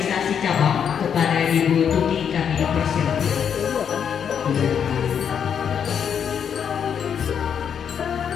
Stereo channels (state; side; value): quieter; right; 7.8 dB